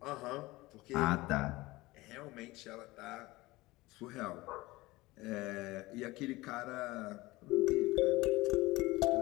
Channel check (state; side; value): quieter; right; 20.4 dB